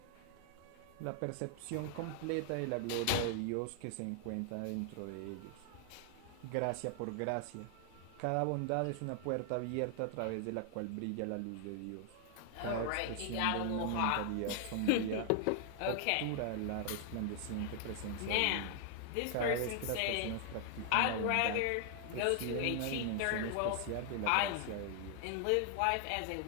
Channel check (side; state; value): both; different; correlation 0.00